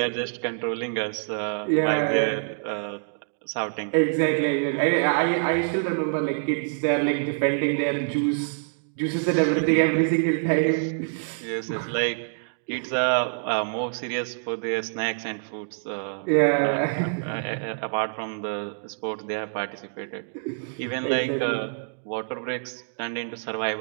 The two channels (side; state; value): left; silent; digital silence